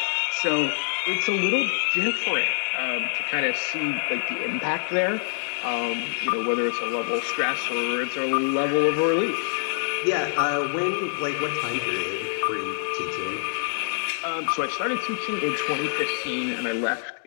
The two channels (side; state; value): right; silent; digital silence